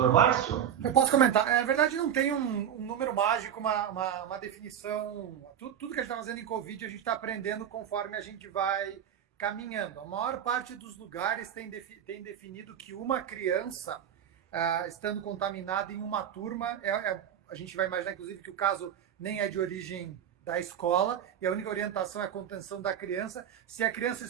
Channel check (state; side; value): quieter; left; 9.4 dB